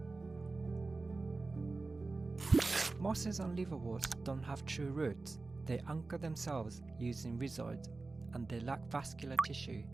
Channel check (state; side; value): quieter; left; 3.5 dB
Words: Mosses and liverworts don't have true roots. They anchor themselves using rhizoids, and they lack vascular tissue,